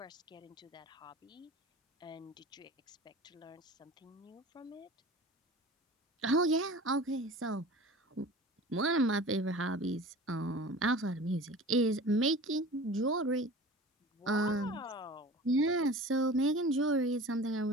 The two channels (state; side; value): normal; both; correlation 0.39